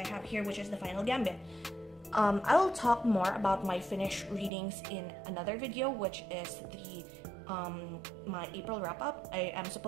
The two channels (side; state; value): left; drops out; at 4.5 s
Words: have here, which is The Final Gambit. I'll talk more about my finished readings in another video, which is the my April wrap-up. I am